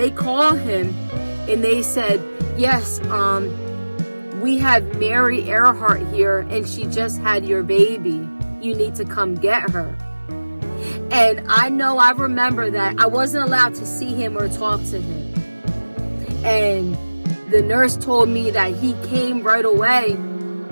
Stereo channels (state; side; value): inverted; both; correlation -1.00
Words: call him and they said, yes, we have Mary Earhart here and she just had your baby. You need to come get her. And I remember that I wasn't allowed to see him or talk to him. And the nurse told me that he came right away